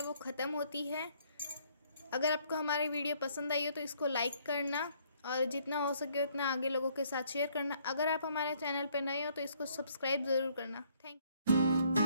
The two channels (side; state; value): both; inverted; correlation -0.65